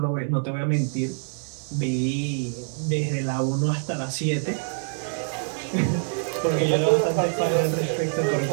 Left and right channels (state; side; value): silent; left; digital silence